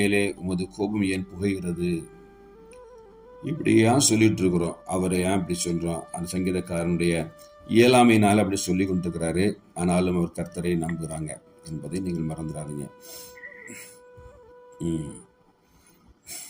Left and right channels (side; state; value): both; identical; correlation 1.00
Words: உமது கோபம் ஏன் புகைகிறது. இப்படி ஏன் சொல்லிட்டு இருக்கிறோம், அவரை ஏன் இப்படி சொல்கிறோம்? அந்த சங்கீதக்காரனுடைய இயலாமையினால் அப்படி சொல்லி கொண்டிருக்கிறாரு. ஆனாலும் அவர் கர்த்தரை நம்புகிறாங்க என்பதை நீங்கள் மறந்துடாதீங்க.